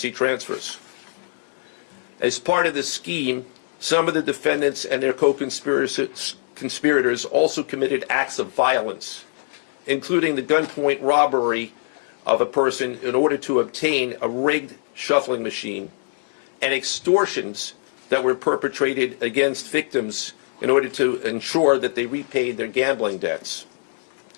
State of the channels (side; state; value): right; silent; digital silence